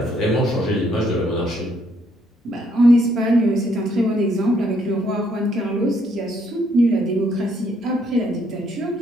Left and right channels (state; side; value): normal; both; correlation 0.70